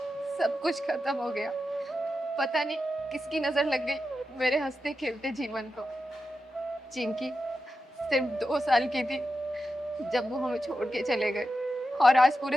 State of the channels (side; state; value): both; normal; correlation 0.90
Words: सब कुछ खत्म हो गया। पता नहीं किसकी नजर लग गई मेरे हंसते खेलते जीवन को। चिंकी सिर्फ 2 साल की थी जब वो हमें छोड़ के चले गए और आज